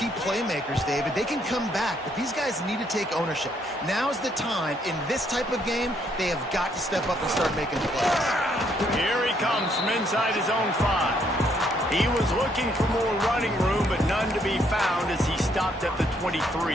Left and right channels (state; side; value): normal; both; correlation 0.70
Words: playmakers, David. They can come back, but these guys need to take ownership. Now's the time. In this type of game, they have got to step up and start making plays. Here he comes from inside his own 5. He was looking for more running room, but none to be found as he stopped at the